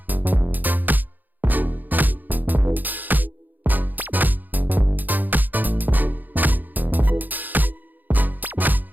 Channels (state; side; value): late; left; 0.085 ms